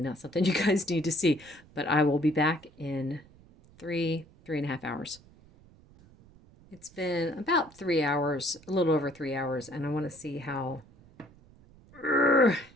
something you guys need to see. But I will be back in 3.5 hours. It's been about 3 hours, a little over 3 hours, and I want to see how...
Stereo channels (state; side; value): noise; right; rumble, 25 dB below the sound